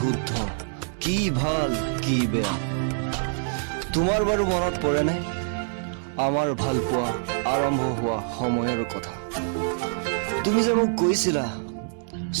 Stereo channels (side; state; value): left; silent; digital silence